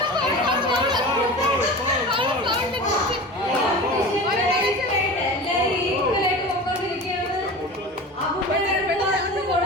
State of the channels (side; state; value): both; normal; correlation 0.33